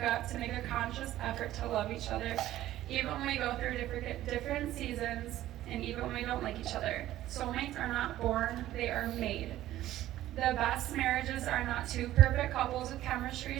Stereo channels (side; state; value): left; quieter; 14.1 dB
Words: up to make a conscious effort to love each other, even when we go through different seasons, and even when we don't like each other. Soulmates are not born, they are made. The best marriages are not two perfect couples with chemistry